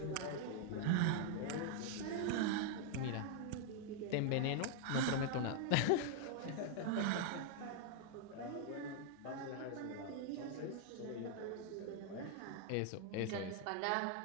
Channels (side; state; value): both; different; correlation 0.00